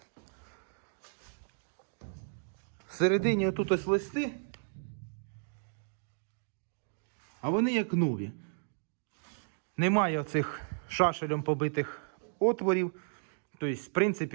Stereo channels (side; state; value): left; silent; digital silence